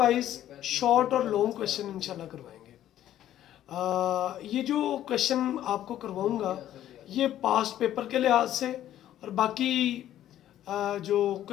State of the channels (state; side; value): quieter; right; 12.2 dB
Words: शॉर्ट और लॉन्ग क्वेश्चन इंशाल्लाह करवाएंगे। ये जो क्वेश्चन आपको करवाऊंगा ये पास्ट पेपर के लिहाज से और बाकी जो